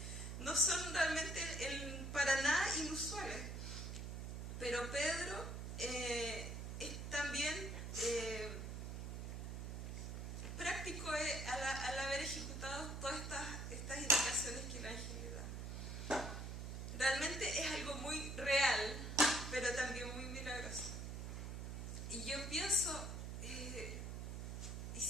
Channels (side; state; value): right; noise; hum, 5 dB below the sound